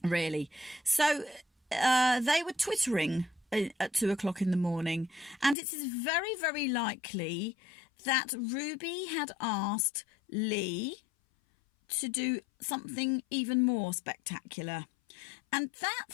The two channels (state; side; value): drops out; right; at 5.6 s